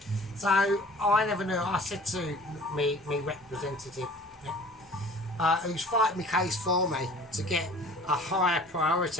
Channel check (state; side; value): normal; both; correlation 0.47